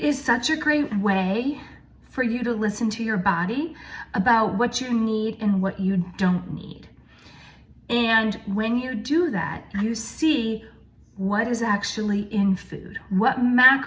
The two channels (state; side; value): identical; both; correlation 1.00